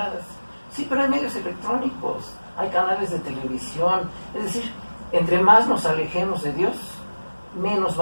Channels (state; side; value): inverted; both; correlation -1.00